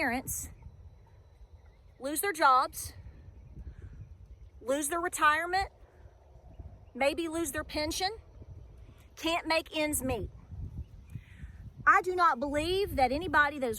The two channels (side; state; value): both; identical; correlation 1.00